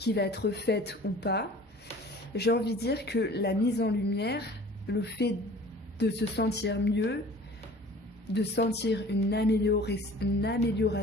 va être faite ou pas, j'ai envie de dire que la mise en lumière, le fait de se sentir mieux, de sentir une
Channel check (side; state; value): both; normal; correlation 0.46